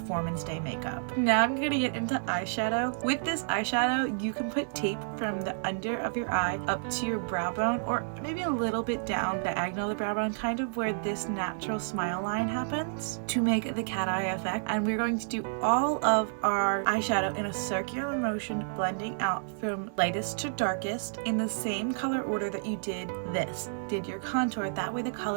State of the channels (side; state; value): left; silent; 58 dB below the other